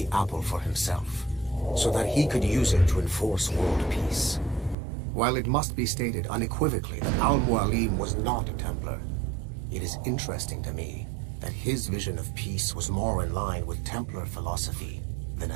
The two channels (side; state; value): left; drops out; at 4.8 s